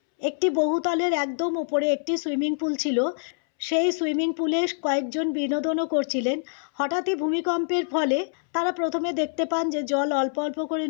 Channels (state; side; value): silent; right; 61 dB below the other